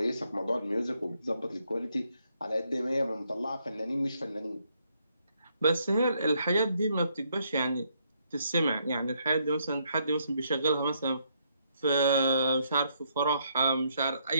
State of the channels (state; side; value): inverted; both; correlation -0.73